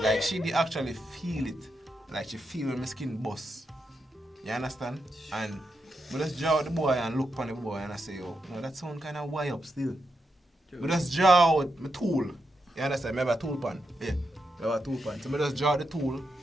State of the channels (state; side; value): normal; both; correlation 0.85